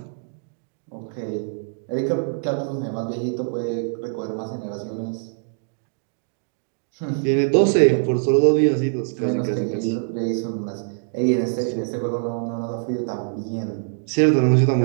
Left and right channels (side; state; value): left; silent; digital silence